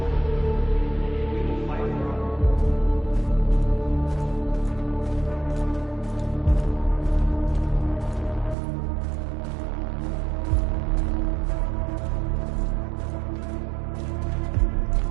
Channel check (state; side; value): drops out; left; at 8.6 s